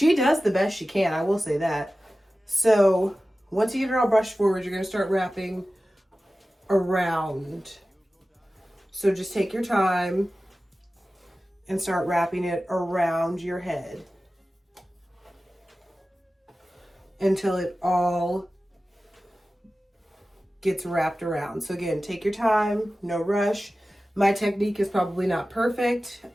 does the best she can, I will say that. So once you get it all brushed forward, you're going to start wrapping around. So just take your time and start wrapping it around your head until it all gets wrapped around. So again, take your time, no rush. My technique is probably not perfect.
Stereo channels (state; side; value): normal; both; correlation 0.95